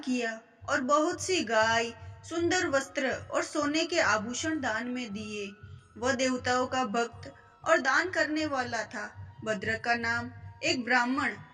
और बहुत सी गाय, सुंदर वस्त्र और सोने के आभूषण दान में दिए। वह देवताओं का भक्त और दान करने वाला था। भद्र का नाम एक ब्राह्मण,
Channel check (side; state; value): both; identical; correlation 1.00